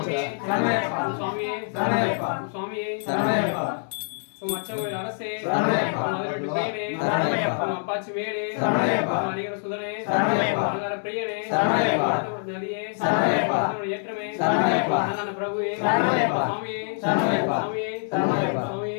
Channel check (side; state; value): right; silent; digital silence